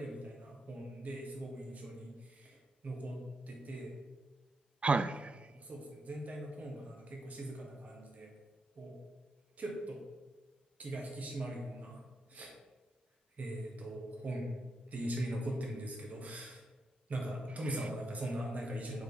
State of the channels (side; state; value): both; normal; correlation 0.83